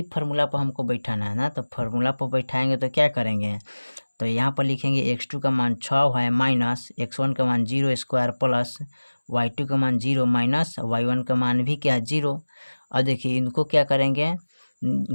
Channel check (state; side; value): inverted; both; correlation -1.00